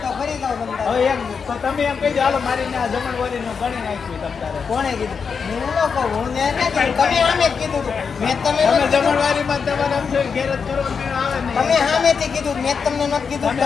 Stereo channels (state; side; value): quieter; right; 5.9 dB